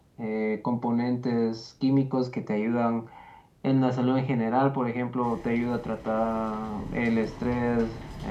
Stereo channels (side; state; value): both; identical; correlation 1.00